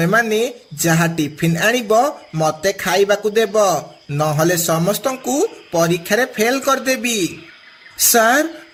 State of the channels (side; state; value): both; identical; correlation 1.00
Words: माने जहा टिफिन आनिबो मते खाइबाकू देबो, नहले समस्तंकू परीक्षा रे फेल कर देबी। सार